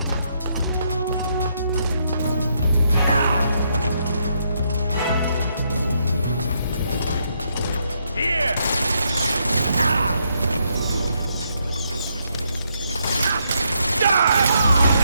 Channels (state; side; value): inverted; both; correlation -0.77